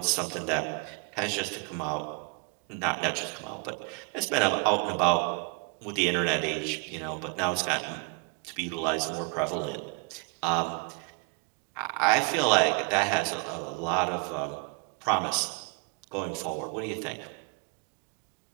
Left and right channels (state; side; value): quieter; left; 35.4 dB